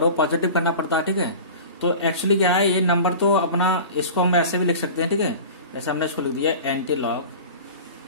हो पॉजिटिव करना पड़ता है, ठीक है। तो एक्चुअली क्या है, ये नंबर तो अपना, इसको हम ऐसे भी लिख सकते हैं, ठीक है। जैसे हमने इसको लिख दिया एंटीलॉग,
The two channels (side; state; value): both; inverted; correlation -0.36